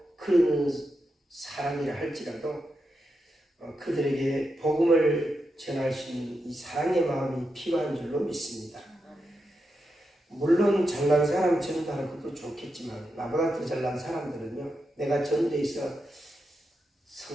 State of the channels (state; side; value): normal; both; correlation 0.86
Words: 그런 사람이라 할지라도 그들에게 복음을 전할 수 있는 이 사랑의 마음이 필요한 줄로 믿습니다. 물론 잘난 사람 전도하는 것도 좋겠지만 나보다 더 잘난 사람들은요. 내가 전도해서